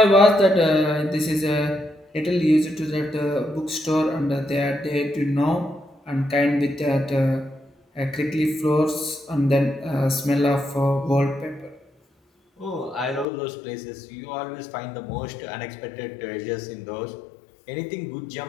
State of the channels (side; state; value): right; drops out; at 13.2 s